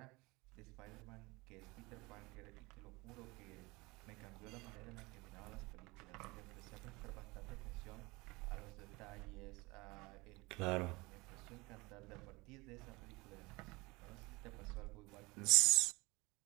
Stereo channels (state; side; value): quieter; left; 24.2 dB